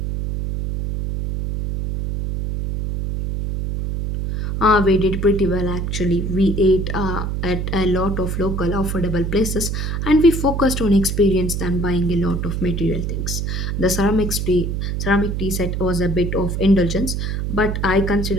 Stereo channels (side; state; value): right; noise; hum, 2 dB below the sound